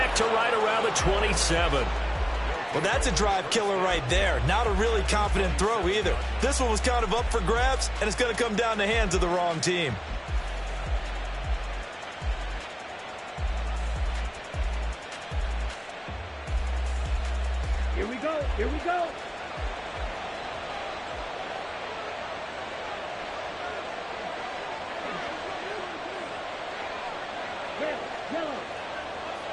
to right around the 27. Well, that's a drive killer right there. Not a really confident throw either. This one was kind of up for grabs, and it's going to come down the hands of the wrong team. Here we go. Here we go.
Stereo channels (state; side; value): identical; both; correlation 1.00